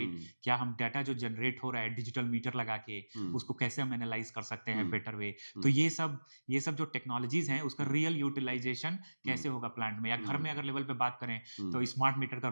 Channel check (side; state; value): both; inverted; correlation -1.00